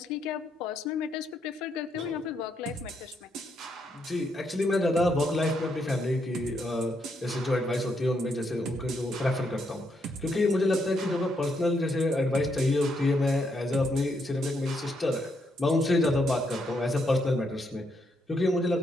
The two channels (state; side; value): normal; both; correlation 0.77